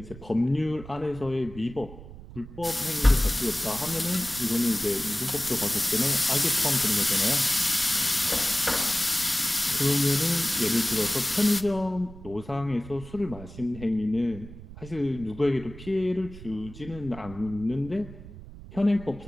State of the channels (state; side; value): noise; right; rumble, 15 dB below the sound